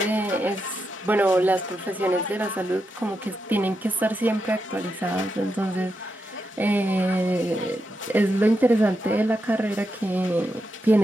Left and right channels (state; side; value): normal; both; correlation 0.85